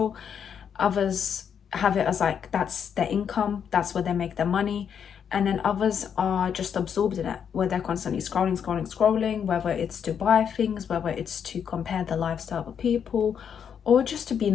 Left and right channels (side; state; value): right; quieter; 7.8 dB